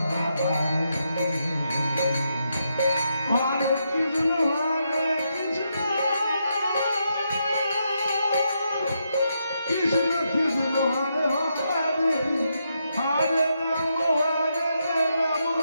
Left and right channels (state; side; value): inverted; both; correlation -0.81